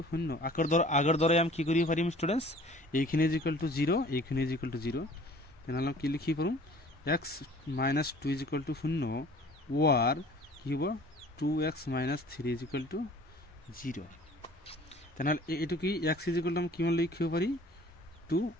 0 আগৰ দৰে আমি কি কৰিব পাৰিম ষ্টুডেন্টস এইখিনি ইজ ইকুয়াল টু 0 এইখিনি ইজ ইকুয়াল টু 0 তেনেহলে কি লিখি পাৰোঁ x - 2 is equal to 0 or কি হ'ব 2x - 3 ইজ ইকুয়াল টু 0 তেনেহলে এইটো কি x ইজ ইকুয়াল টু আমি কিমান লিখিব পাৰি 2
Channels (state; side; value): normal; both; correlation 0.49